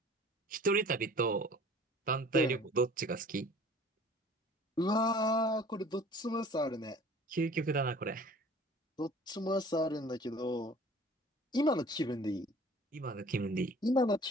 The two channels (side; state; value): both; normal; correlation 0.48